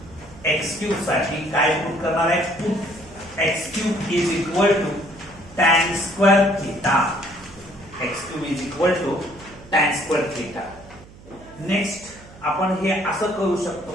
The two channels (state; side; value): noise; right; hum, 21 dB below the sound